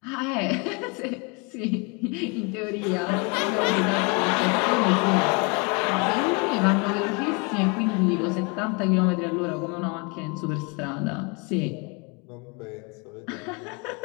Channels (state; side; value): quieter; right; 31.5 dB